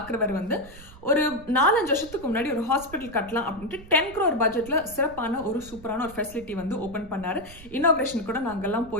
வந்து ஒரு 4-5 வருஷத்துக்கு முன்னாடி ஒரு ஹாஸ்பிட்டல் கட்டலாம் அப்படின்ட்டு 10 crore பட்ஜெட்ல சிறப்பான ஒரு சூப்பரான ஒரு ஃபெசிலிட்டி வந்து ஓப்பன் பண்ணாரு. இனாகிரேஷன் கூட நாங்கெல்லாம்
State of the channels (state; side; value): noise; right; rumble, 18 dB below the sound